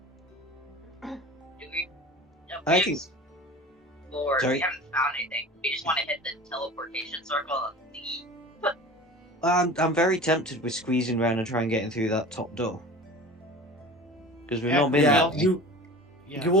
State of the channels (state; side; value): normal; both; correlation 0.38